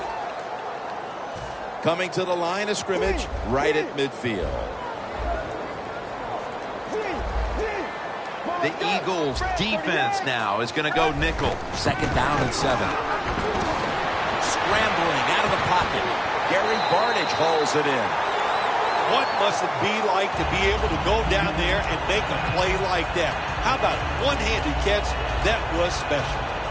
Coming to the line of scrimmage right at midfield. The Eagles defense now is going to go nickel. Second down and 7. Scrambling out of the pocket. Gary Barnidge hauls it in. What must it be like to be able to go down there and make a play like that? How about one-handed catch? That was special.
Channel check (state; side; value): identical; both; correlation 1.00